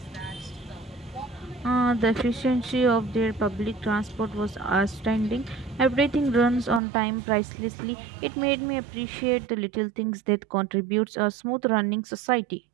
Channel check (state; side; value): drops out; left; at 6.8 s